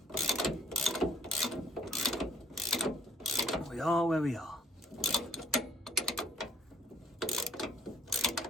we are where we are.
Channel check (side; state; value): both; normal; correlation 0.60